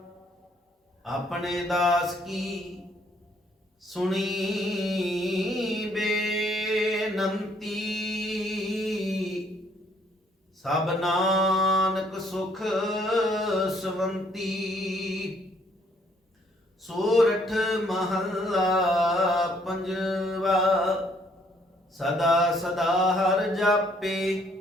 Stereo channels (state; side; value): normal; both; correlation 0.66